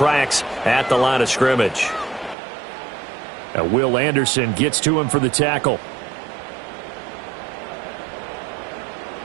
at the line of scrimmage. Now Will Anderson gets to him for the tackle.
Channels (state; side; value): drops out; left; at 2.4 s